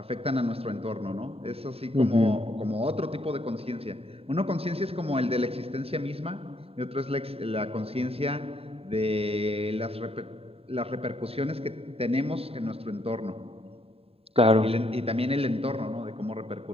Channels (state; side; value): late; left; 0.28 ms